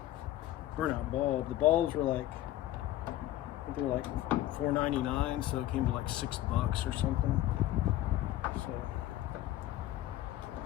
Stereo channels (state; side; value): quieter; right; 14.4 dB